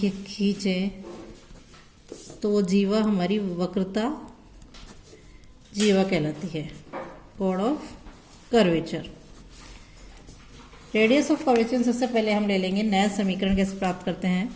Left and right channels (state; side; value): identical; both; correlation 1.00